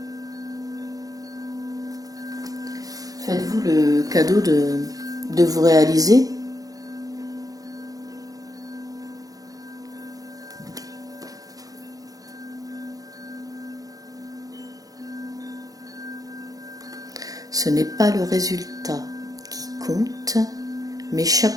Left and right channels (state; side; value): late; left; 0.17 ms